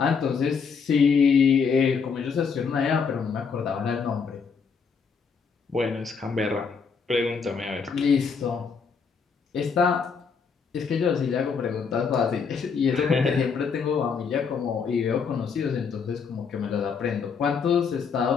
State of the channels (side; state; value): right; quieter; 5.8 dB